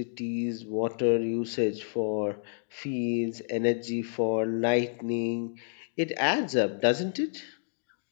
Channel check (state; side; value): silent; right; digital silence